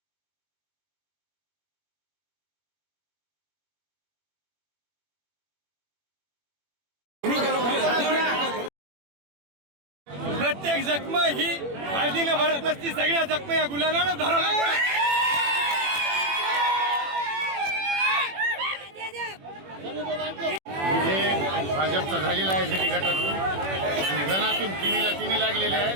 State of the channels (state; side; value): late; left; 21 ms